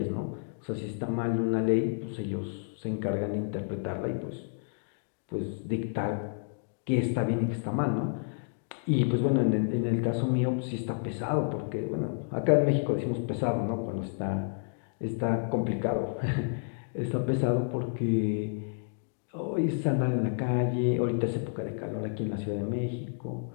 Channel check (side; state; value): right; silent; digital silence